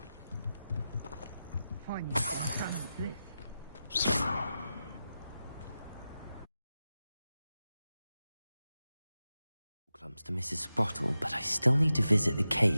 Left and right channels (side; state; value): both; inverted; correlation -0.92